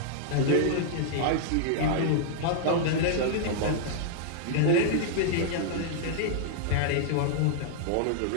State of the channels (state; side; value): different; both; correlation -0.01